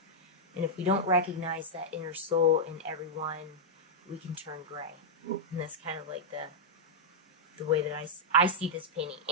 And if we don't recognize that inner soul in everyone, we can turn gray. And that's kind of like the way that I see this painting.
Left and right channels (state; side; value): normal; both; correlation -0.06